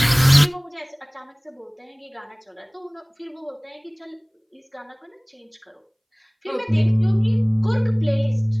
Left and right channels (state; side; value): identical; both; correlation 1.00